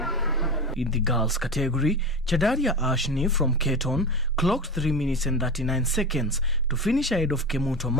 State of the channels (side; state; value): both; normal; correlation 0.25